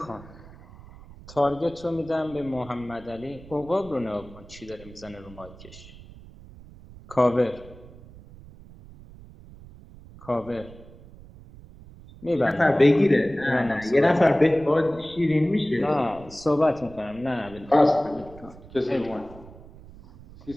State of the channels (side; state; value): right; noise; rumble, 20 dB below the sound